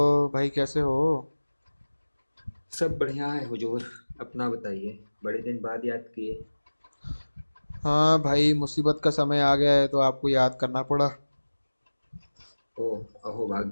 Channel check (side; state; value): both; inverted; correlation -1.00